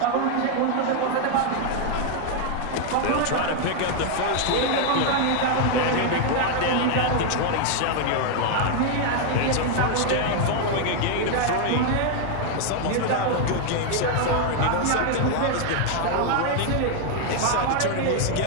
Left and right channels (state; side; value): different; both; correlation 0.01